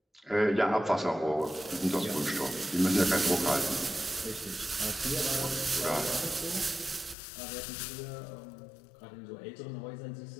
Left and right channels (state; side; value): drops out; right; at 7.2 s